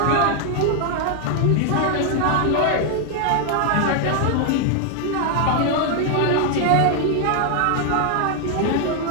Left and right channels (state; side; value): different; both; correlation 0.00